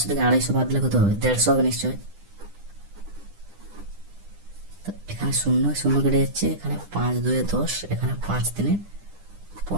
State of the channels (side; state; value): left; late; 9.9 ms